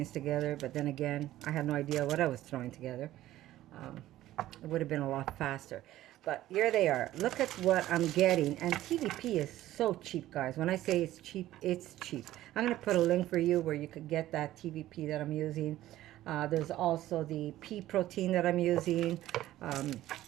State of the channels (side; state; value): left; quieter; 14.5 dB